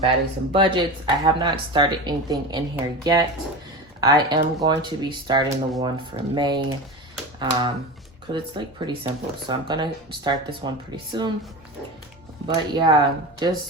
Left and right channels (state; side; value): normal; both; correlation 0.26